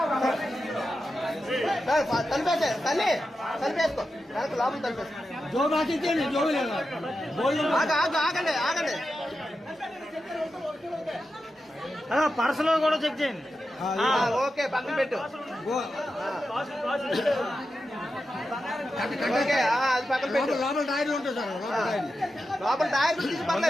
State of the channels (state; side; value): normal; both; correlation 0.90